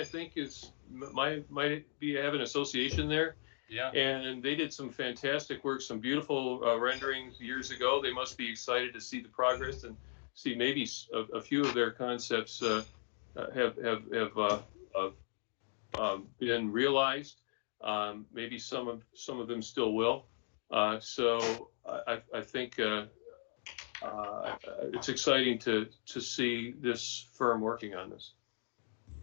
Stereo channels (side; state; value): right; silent; digital silence